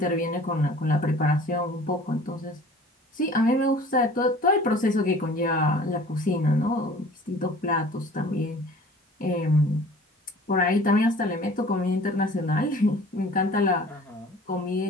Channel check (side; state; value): both; normal; correlation 0.47